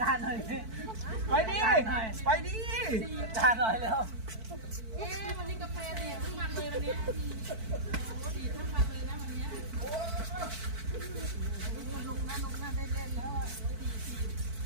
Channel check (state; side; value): late; left; 4.5 ms